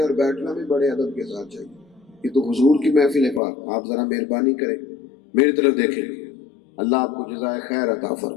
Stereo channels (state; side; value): drops out; right; at 3.4 s